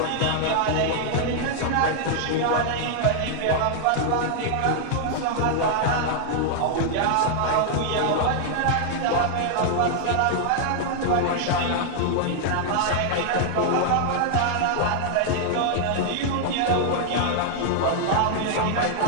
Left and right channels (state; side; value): different; both; correlation -0.01